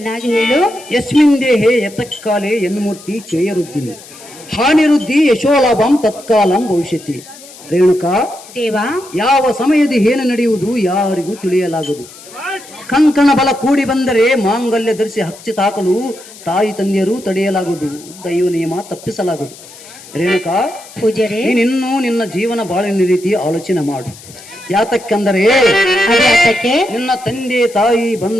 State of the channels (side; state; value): left; noise; hiss, 19 dB below the sound